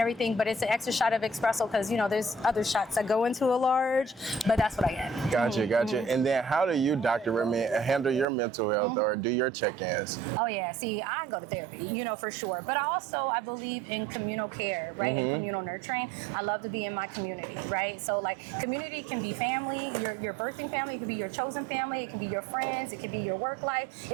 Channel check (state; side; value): drops out; left; at 8.2 s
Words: everything, but it's an extra shot of espresso because there's other shots that go into a large, but that's what I get. Gotcha. And then how do you, Dr. Redman, handle your mental health or do your check-ins? Oh yeah, see, I go to therapy, for sure. But I believe in communal care, right? And communal nurturing. I love to be in my community, right? So like community can be family, your birthing family, it could be your chosen family, it can be your friends, it could be your work life,